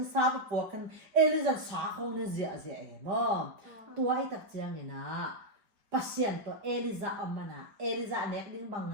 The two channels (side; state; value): left; late; 4.9 ms